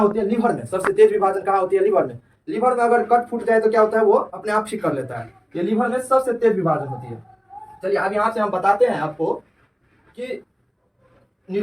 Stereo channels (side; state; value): both; identical; correlation 1.00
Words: है? लीवर में। सबसे तेज विभाजन कहाँ होती है? लीवर में। लीवर में अगर कट फूट जाए तो क्या होता है? वो अपने आप ठीक कर लेता है। ये लीवर में सबसे तेज विभाजन होती है। चलिए अब यहाँ से हम बताते हैं आपको कि